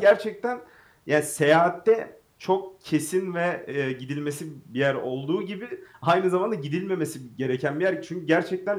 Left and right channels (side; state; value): both; identical; correlation 1.00